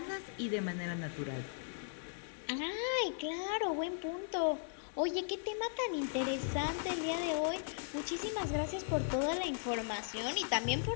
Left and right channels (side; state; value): right; silent; digital silence